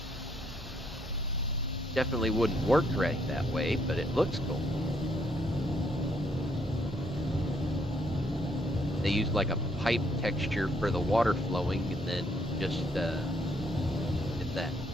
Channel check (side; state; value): both; normal; correlation 0.71